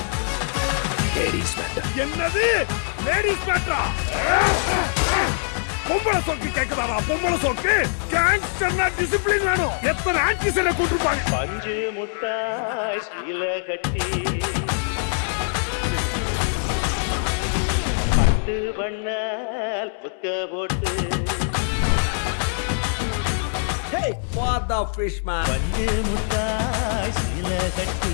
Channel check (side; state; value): right; silent; 63 dB below the other